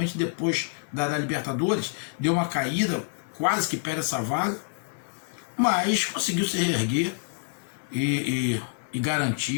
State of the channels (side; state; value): right; silent; digital silence